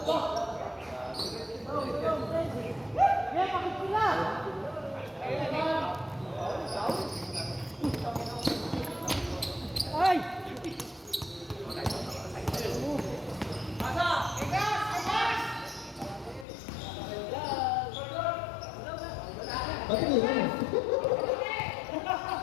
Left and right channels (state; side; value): drops out; right; at 16.4 s